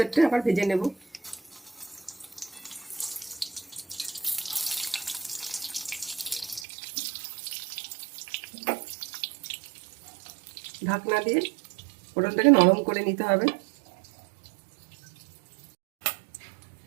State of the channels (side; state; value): left; drops out; at 6.7 s